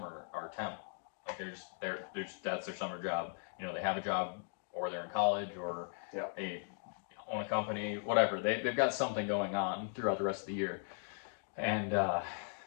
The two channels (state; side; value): silent; right; 52 dB below the other